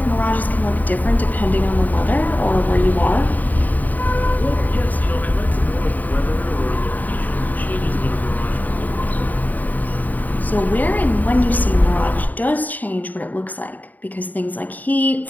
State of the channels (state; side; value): late; right; 0.082 ms